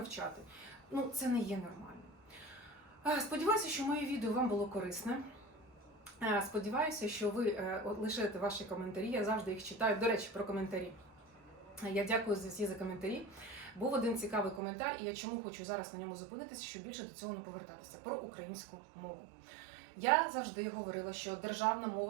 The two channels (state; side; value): drops out; left; at 14.6 s